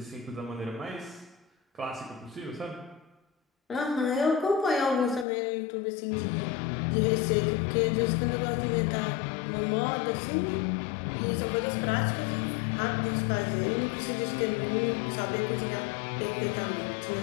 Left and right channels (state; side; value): drops out; right; at 5.2 s